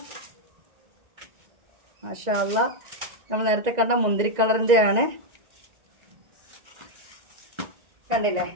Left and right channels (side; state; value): left; late; 2.0 ms